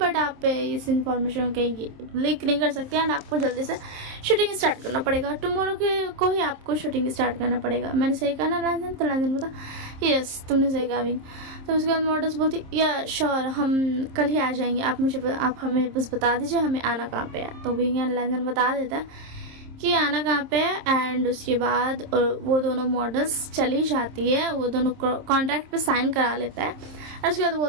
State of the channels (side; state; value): left; late; 26 ms